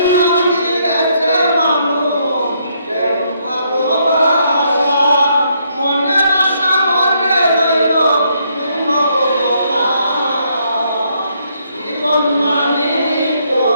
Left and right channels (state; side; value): inverted; both; correlation -0.72